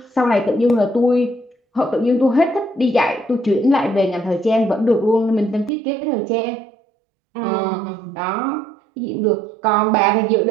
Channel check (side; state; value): left; drops out; at 5.7 s